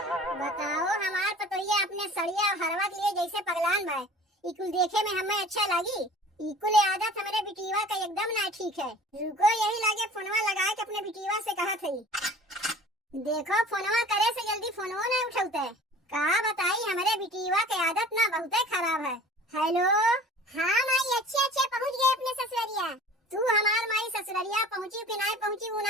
बताओ हमार पतोहिया अपने सड़िया और हरवा के लिए जैसे पगलान बा। इकुल देखे में हमें अच्छा लगी, इकुल आदत हमारे बिटिया का एकदम ना ठीक है। रुको यही लागे फोनवा लगा के अपने बिटिया से कहा थी। देखो फोनवा करे से जल्दी फोनवा नहीं उठाते। कहा बताई हमारे बिटिया के आदत ना बहुत खराब है। हेलो, हाँ माई अच्छे पहुँच गए अपने ससुरिया। तू हमार माई ससुरिया पहुँची कि नहीं पहुँची वो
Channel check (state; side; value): normal; both; correlation 0.45